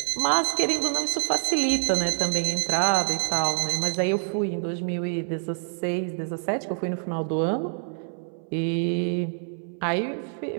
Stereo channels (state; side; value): silent; left; 61 dB below the other